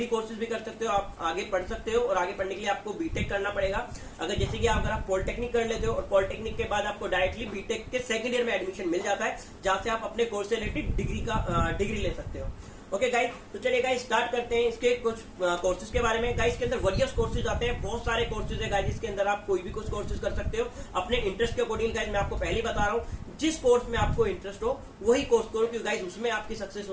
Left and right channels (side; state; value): both; identical; correlation 1.00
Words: कोर्सेज भी कर सकते हो, आप आगे पढ़ सकते हो और आगे पढ़ने के लिए आपको बीटेक करना पड़ेगा। अगर जैसे कि अगर आप पॉलिटेक्निक कर लेते हो और पॉलिटेक्निक के बाद आपको डायरेक्टली बीटेक के सेकंड ईयर में एडमिशन मिल जाता है जहां से आप अपने कोर्स से रिलेटेड डिग्री ले सकते हो। ओके गाइस, तो चलिए गाइस स्टार्ट करते हैं इसके कुछ कोर्सेज के बारे में। गाइस के अंदर वेरियस कोर्सेज आते हैं, बहुत सारे कोर्सेज है गाइस, इसके अंदर आप कोई भी कुछ कोर्सेज कर सकते हो अपने इंटरेस्ट के अकॉर्डिंग। गाइस मैं आपको पहले ही बता रहा हूँ जिस कोर्स में आपको इंटरेस्ट हो वही कोर्स करो, क्योंकि गाइस उसमें आपकी सक्सेस